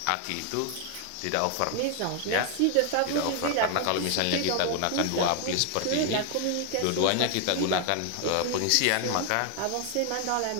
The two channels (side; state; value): both; different; correlation 0.00